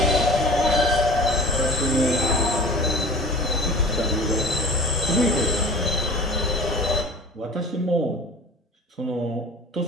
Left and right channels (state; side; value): normal; both; correlation 0.41